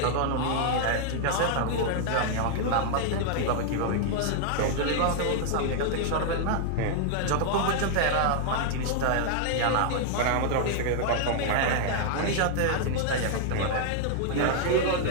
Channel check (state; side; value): different; both; correlation 0.00